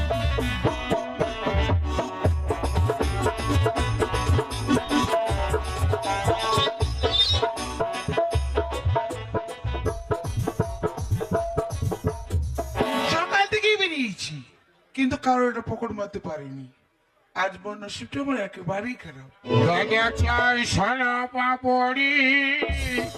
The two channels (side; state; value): both; identical; correlation 1.00